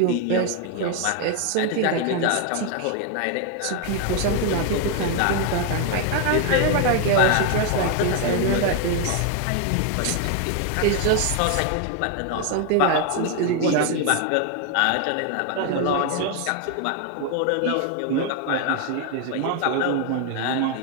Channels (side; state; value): both; different; correlation 0.01